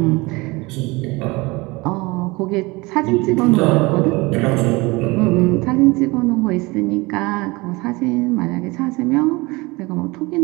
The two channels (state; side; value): quieter; left; 23.9 dB